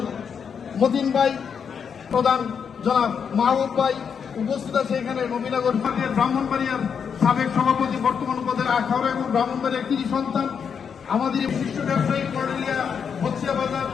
মতিন ভাই, প্রধান জনাব মাহবুব ভাই, উপস্থিত আছে এখানে নবীনগর ব্রাহ্মণবাড়িয়ার সাবেক সভাপতি, বর্তমান পদের আখাউড়া এবং ব্রাহ্মণবাড়িয়ার কৃষি সন্তান, আমাদের বিশিষ্ট ব্যবসায়ী কর্নেলিয়া বছিয়া বাজার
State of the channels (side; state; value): right; quieter; 6.9 dB